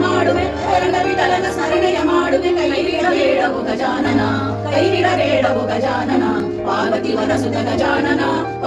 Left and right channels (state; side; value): identical; both; correlation 1.00